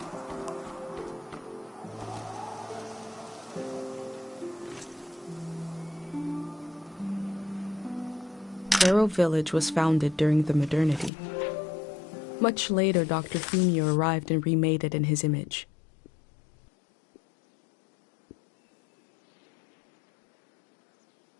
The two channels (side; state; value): right; drops out; at 11.1 s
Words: Arrow Village was founded during the modernity. Much later, Dr. Fumio arrived and remade it in his image.